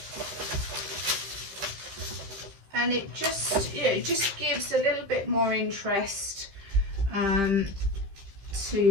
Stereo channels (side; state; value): left; late; 15 ms